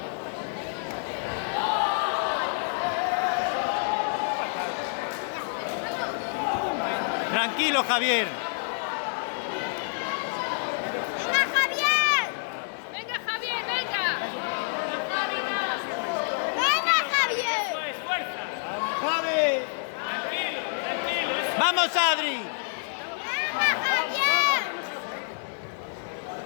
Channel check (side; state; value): right; silent; digital silence